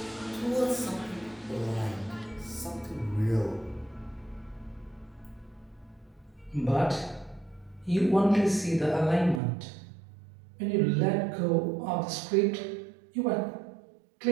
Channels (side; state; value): left; drops out; at 9.4 s